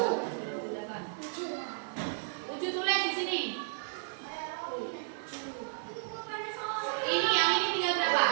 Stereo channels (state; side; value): silent; left; 56 dB below the other